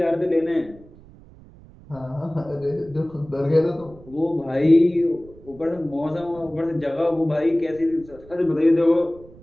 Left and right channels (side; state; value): right; noise; rumble, 22 dB below the sound